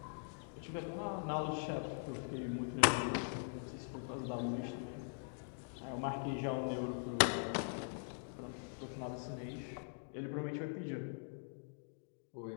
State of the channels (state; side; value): silent; right; digital silence